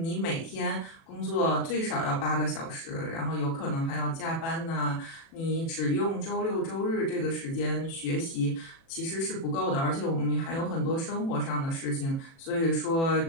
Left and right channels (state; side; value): late; right; 36 ms